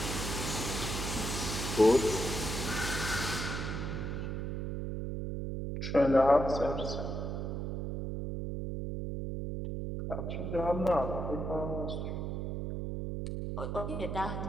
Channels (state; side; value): noise; right; hum, 3 dB below the sound